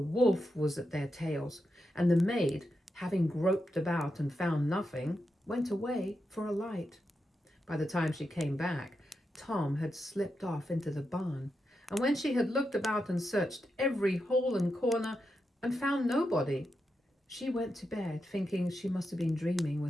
was at their tails, and the maid, having groped about and found nothing, went away for a light. By the time she came back, Tom had slipped off into the barn, and when she had looked about and searched every hole and corner and found nobody, she went to bed thinking she must have been dreaming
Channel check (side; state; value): both; normal; correlation 0.87